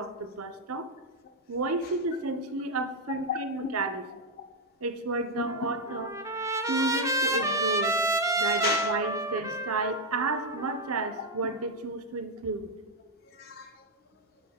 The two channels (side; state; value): both; normal; correlation 0.01